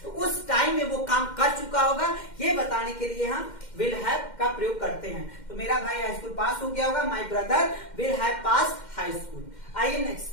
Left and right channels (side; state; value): right; late; 2.1 ms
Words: तो उस टाइम में वो काम कर चुका होगा, ये बताने के लिए हम विल हैव का प्रयोग करते हैं। तो मेरा भाई हाई स्कूल पास हो गया होगा, my brother will have passed high school. आइए